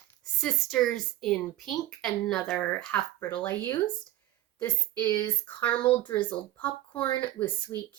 Sisters in Pink, another half brittle I used. This is caramel drizzled popcorn with sweet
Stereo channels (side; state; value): left; quieter; 14.8 dB